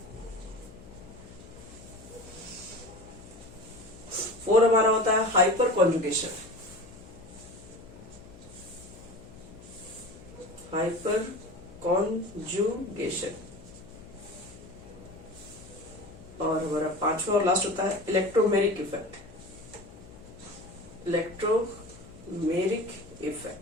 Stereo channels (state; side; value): noise; left; hum, 19 dB below the sound